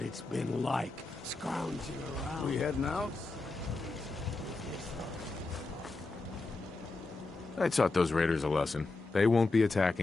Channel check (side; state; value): right; quieter; 3.4 dB